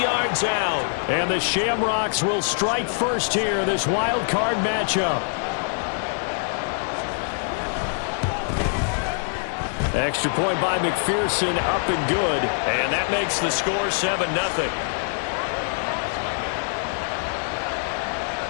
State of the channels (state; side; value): silent; right; digital silence